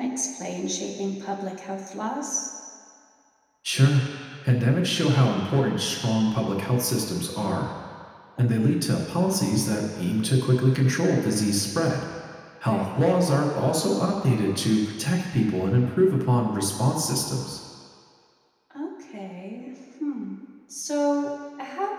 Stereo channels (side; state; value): both; identical; correlation 1.00